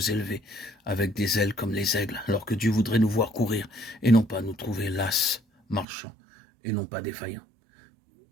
élever, avec des ailes comme les aigles, alors que Dieu voudrait nous voir courir, et non pas nous trouver lasses, marchant, et non pas défaillants.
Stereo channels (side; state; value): left; drops out; at 5.9 s